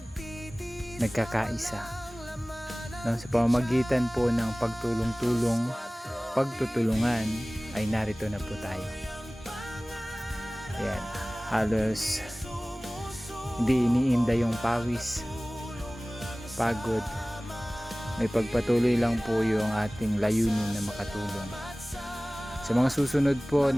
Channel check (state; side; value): normal; both; correlation 0.98